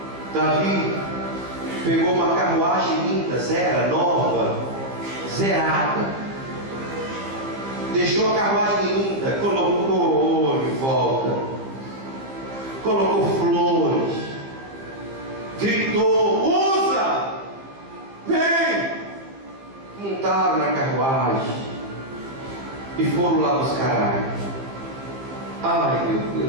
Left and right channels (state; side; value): late; left; 15 ms